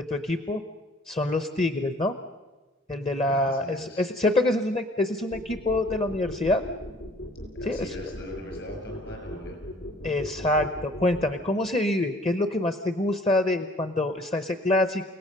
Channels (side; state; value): both; normal; correlation 0.55